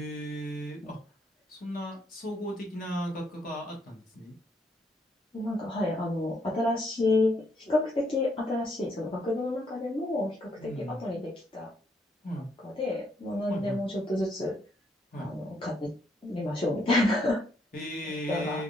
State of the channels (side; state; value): both; normal; correlation 0.73